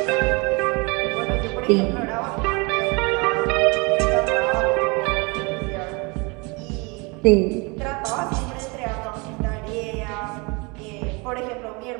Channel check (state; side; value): quieter; left; 28.7 dB